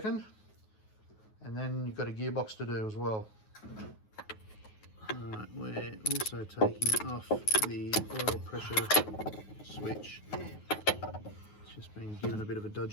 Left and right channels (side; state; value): right; late; 9.4 ms